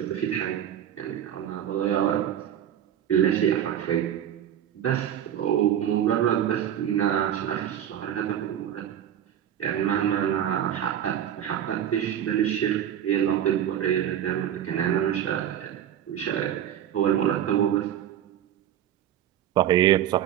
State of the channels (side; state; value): left; quieter; 10.4 dB